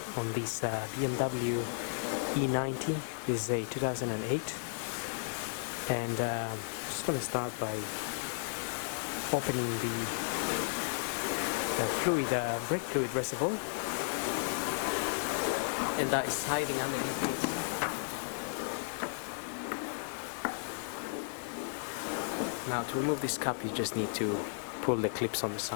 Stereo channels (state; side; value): silent; right; digital silence